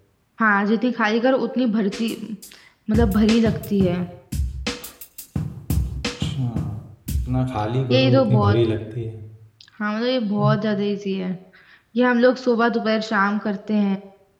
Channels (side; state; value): both; identical; correlation 1.00